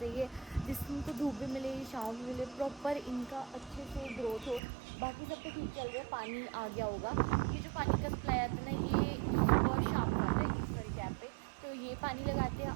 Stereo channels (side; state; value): left; drops out; at 4.6 s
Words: जिससे इनको धूप भी मिले छाँव भी मिले, प्रॉपर इनका अच्छे से ग्रोथ हो। बाकी सब तो ठीक चल रहा है, पानी आ गया होगा। ये जो पानी का सप्लाई आता है ना ये सुबह शाम को आता है इस सारी कैप पे, तो ये पानी लगाते